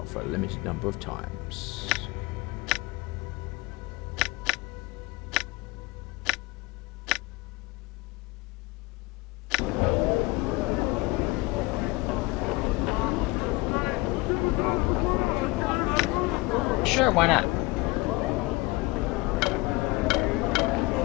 for a limited number of times. Sure, why not?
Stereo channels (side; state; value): right; quieter; 23.0 dB